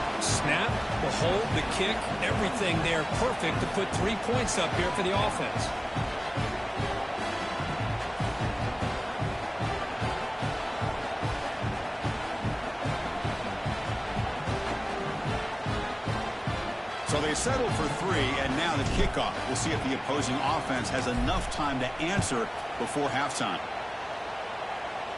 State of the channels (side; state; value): both; identical; correlation 1.00